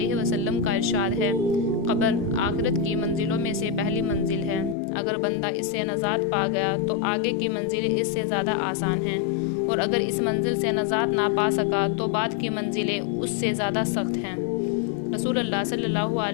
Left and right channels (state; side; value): drops out; right; at 4.8 s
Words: وسلم کا ارشاد ہے، قبر آخرت کی منزلوں میں سے پہلی منزل ہے۔ اگر بندہ اس سے نجات پا گیا تو آگے کی منزلیں اس سے زیادہ آسان ہیں، اور اگر اس منزل سے نجات نہ پا سکا تو بعد کی منزلیں اس سے زیادہ سخت ہیں۔ رسول اللہ صلی اللہ